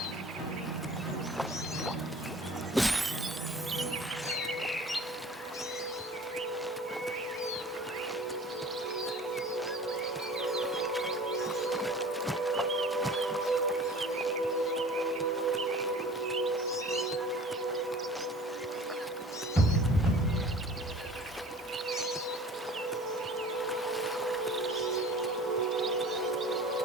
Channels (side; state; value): both; normal; correlation 0.44